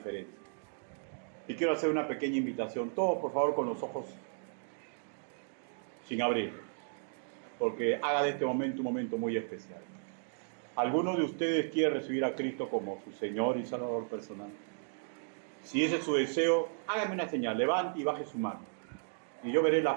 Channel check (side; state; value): left; silent; digital silence